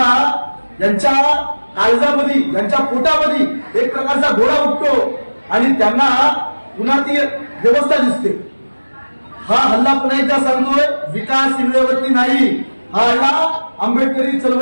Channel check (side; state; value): both; inverted; correlation -1.00